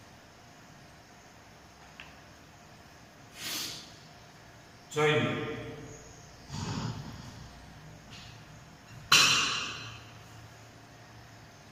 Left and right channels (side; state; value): both; identical; correlation 1.00